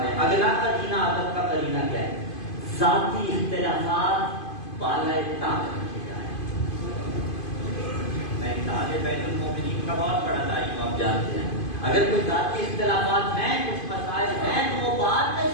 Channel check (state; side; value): late; right; 2.5 ms